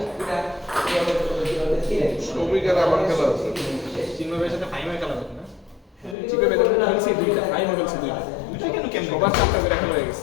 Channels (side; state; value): right; drops out; at 6.2 s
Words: শ্রমিকের আমার খেলা আছে চিন্ময় ভাইয়ের সাথে ফাইনাল খেলা হবে না চিন্ময় ভাই তো খেলছে দুইটা ফাইনাল খেলছে দুইটা কেন সবার চারটা করে খেলা হয়ে